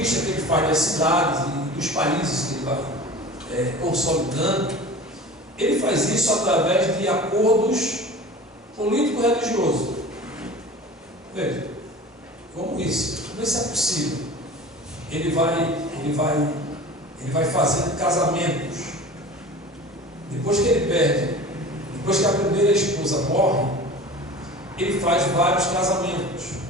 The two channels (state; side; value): normal; both; correlation 0.38